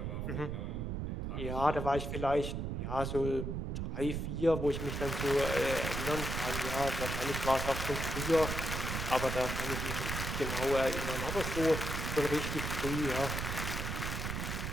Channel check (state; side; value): noise; right; rumble, 3 dB below the sound